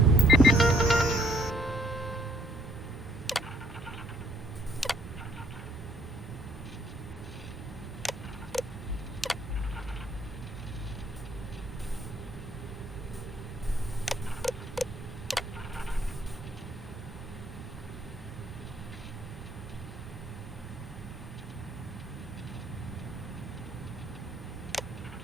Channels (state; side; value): normal; both; correlation 0.66